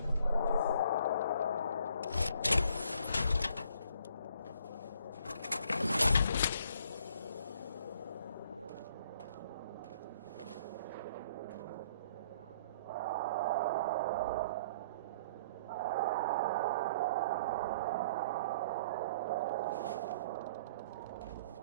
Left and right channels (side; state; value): both; inverted; correlation -0.59